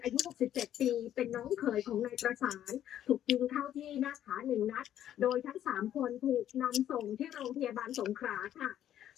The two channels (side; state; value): right; quieter; 11.2 dB